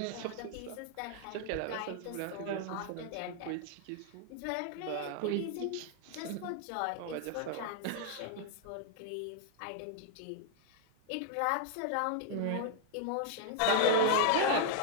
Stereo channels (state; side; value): different; both; correlation -0.01